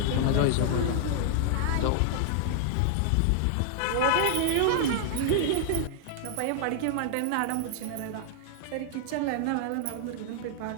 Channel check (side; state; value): both; different; correlation 0.00